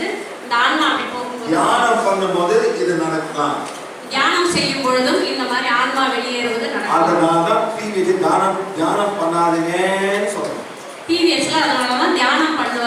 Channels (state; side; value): identical; both; correlation 1.00